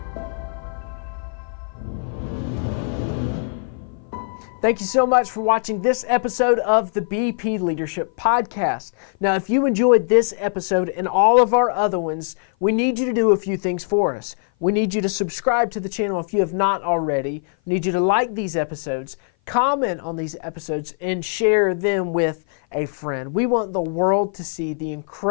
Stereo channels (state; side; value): silent; right; 56 dB below the other